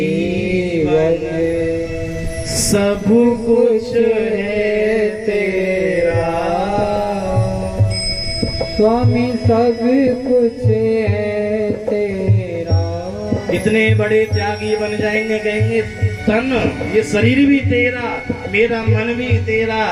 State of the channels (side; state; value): both; identical; correlation 1.00